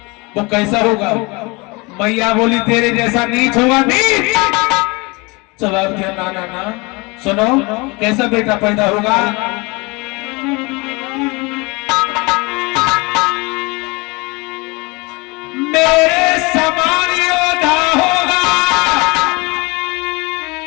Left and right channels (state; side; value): quieter; right; 26.6 dB